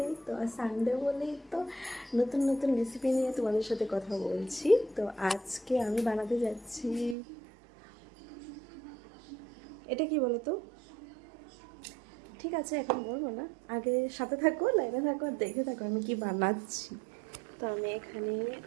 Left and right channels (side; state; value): left; drops out; at 7.2 s